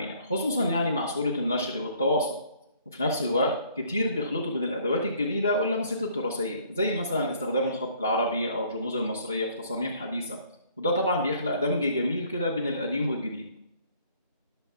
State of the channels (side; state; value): both; inverted; correlation -0.60